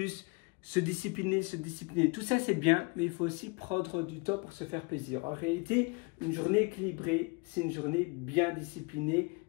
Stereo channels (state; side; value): quieter; right; 30.6 dB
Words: se discipliner, se discipliner. Tout ça c'est bien, mais il faut aussi prendre du temps pour se faire plaisir. En réalité, une journée équilibrée, c'est une journée bien disciplinée,